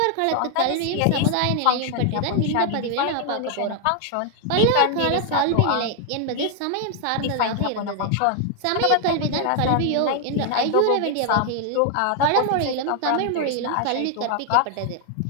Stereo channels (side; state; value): both; different; correlation 0.00